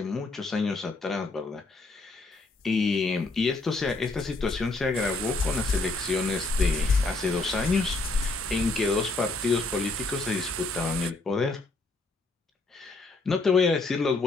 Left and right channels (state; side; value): quieter; right; 3.3 dB